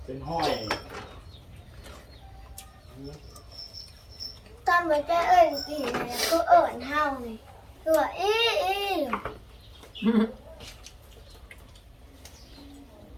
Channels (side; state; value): both; identical; correlation 1.00